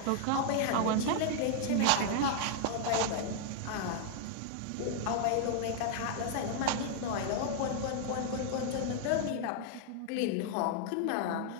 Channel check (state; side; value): different; both; correlation 0.00